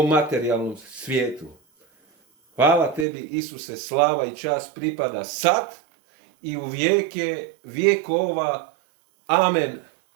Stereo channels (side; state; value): left; drops out; at 3.1 s